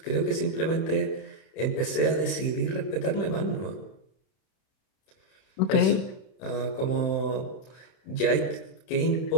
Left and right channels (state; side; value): late; right; 31 ms